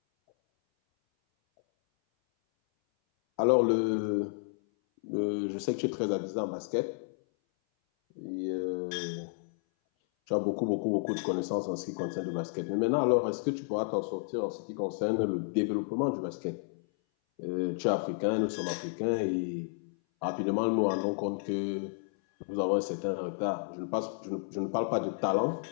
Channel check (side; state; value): right; silent; 57 dB below the other